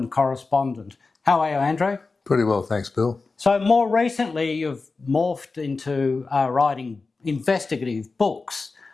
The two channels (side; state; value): right; quieter; 4.0 dB